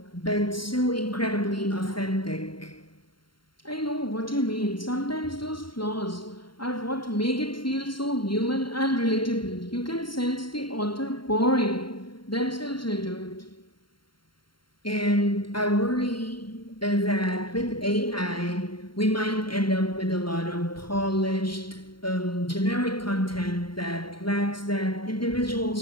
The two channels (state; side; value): late; right; 0.73 ms